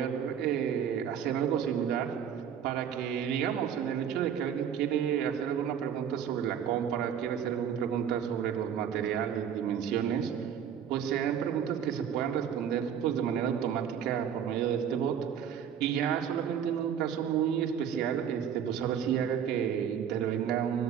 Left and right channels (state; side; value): quieter; left; 8.5 dB